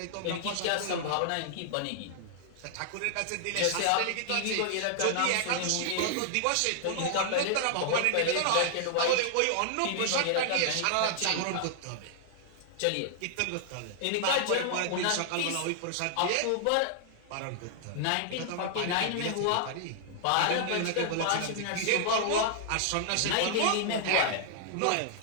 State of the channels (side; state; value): both; different; correlation 0.00